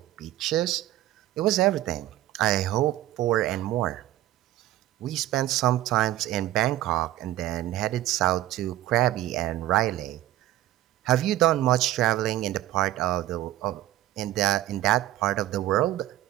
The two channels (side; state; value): left; quieter; 14.6 dB